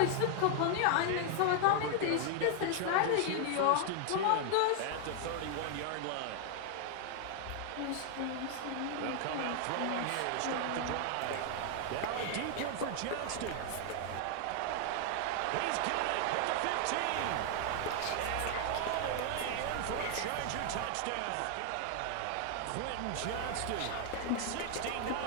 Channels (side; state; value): both; different; correlation 0.00